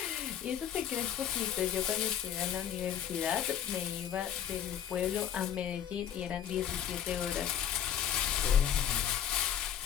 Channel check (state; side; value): quieter; right; 9.6 dB